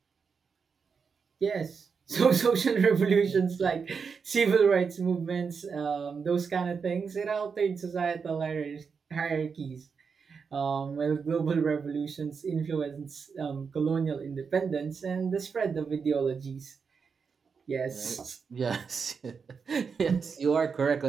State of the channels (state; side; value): quieter; left; 5.7 dB